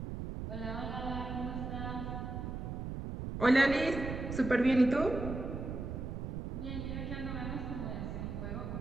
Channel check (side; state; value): right; noise; rumble, 5 dB below the sound